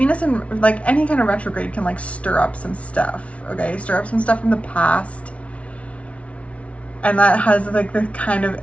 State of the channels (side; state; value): right; late; 0.063 ms